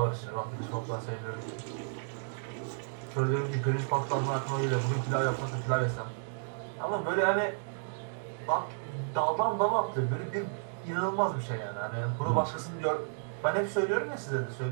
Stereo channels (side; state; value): left; silent; digital silence